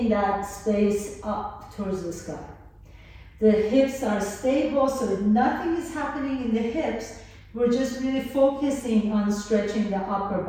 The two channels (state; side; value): identical; both; correlation 1.00